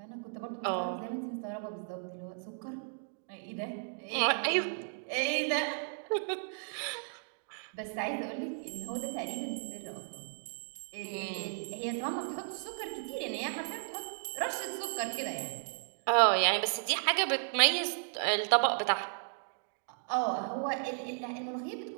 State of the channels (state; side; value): silent; left; digital silence